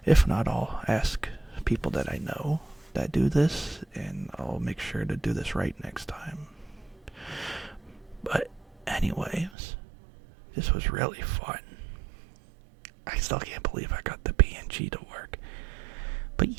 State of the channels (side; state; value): left; drops out; at 9.5 s